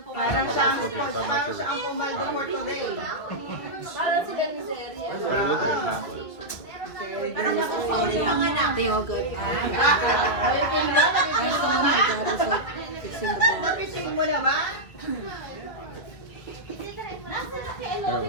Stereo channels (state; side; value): late; right; 2.0 ms